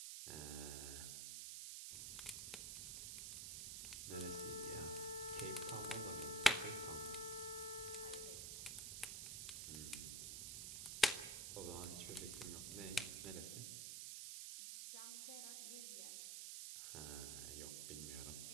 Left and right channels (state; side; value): noise; right; hiss, 3 dB below the sound